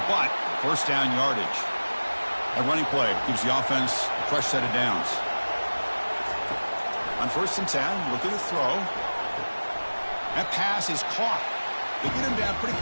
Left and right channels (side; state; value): both; inverted; correlation -1.00